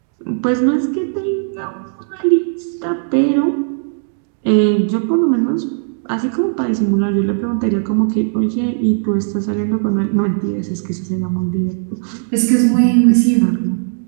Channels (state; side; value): silent; left; digital silence